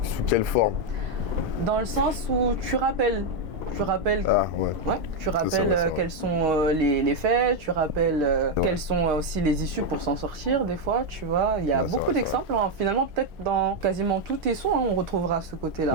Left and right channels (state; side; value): late; left; 4.4 ms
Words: quelle forme ? Dans le sens où tu rappelles. Tu rappelles, tu rappelles quels sont les faits, tu rappelles quelles sont aussi les issues pour s'en sortir des fois, tu vois. Il y a beaucoup d'exemples, hein. Finalement peut-être dans quasiment tous tes sons, hein, on retrouvera ce côté-là.